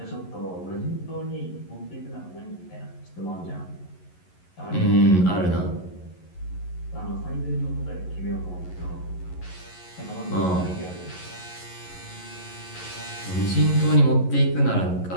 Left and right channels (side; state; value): right; late; 11 ms